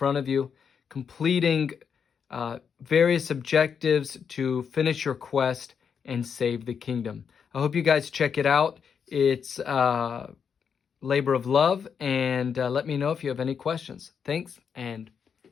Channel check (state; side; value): quieter; right; 6.9 dB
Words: of you, completing various objectives to finish your quest and save the kingdom. I hope you guys check it out. It's labor of love, and let me know if you have any questions. Thanks, and